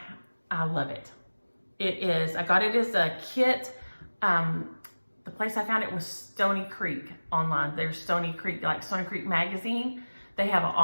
love it. I got it as a kit. The place I found it was Stony Creek online. There's Stony Creek, like Stony Creek Magazine. They have an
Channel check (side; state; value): both; inverted; correlation -1.00